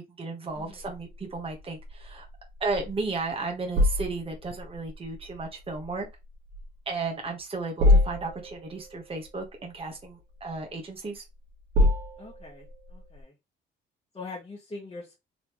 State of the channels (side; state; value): both; normal; correlation 0.37